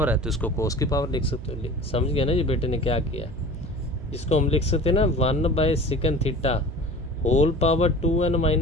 है तो इसको कोस की पावर लिख सकते हो। समझ गया ना जी बेटे ने क्या किया, इसको हम लिख सकते हैं ना 1/सेकंड theta whole power 2n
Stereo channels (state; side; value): noise; right; hum, 11 dB below the sound